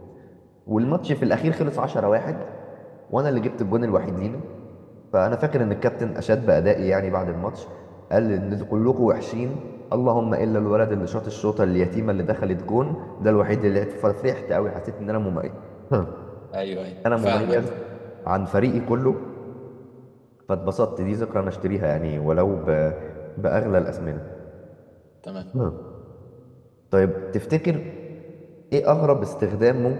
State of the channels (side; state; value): both; identical; correlation 1.00